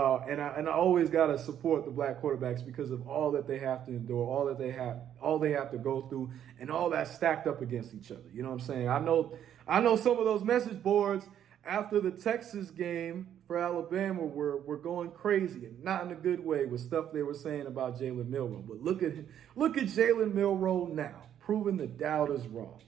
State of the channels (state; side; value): quieter; left; 10.0 dB